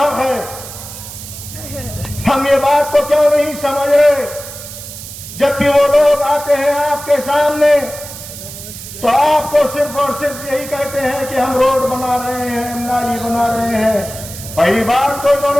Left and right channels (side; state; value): right; noise; hiss, 12 dB below the sound